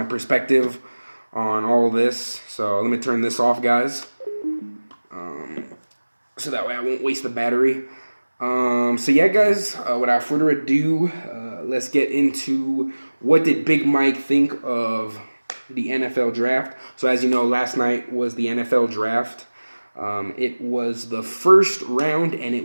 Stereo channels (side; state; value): both; inverted; correlation -1.00